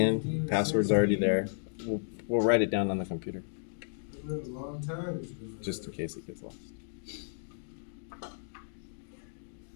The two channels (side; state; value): right; silent; digital silence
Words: Password's already there. We'll write it down on the computer. Just in case it gets lost.